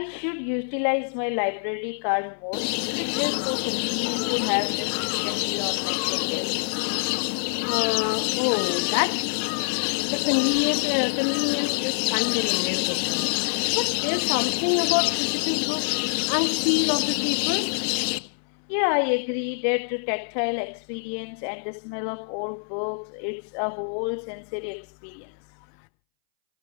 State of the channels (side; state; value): right; silent; 61 dB below the other